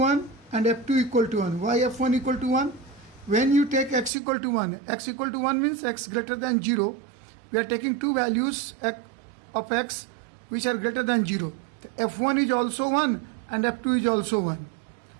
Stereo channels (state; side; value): drops out; left; at 4.1 s